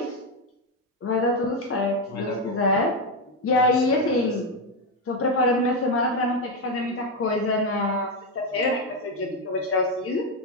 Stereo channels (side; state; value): both; normal; correlation 0.07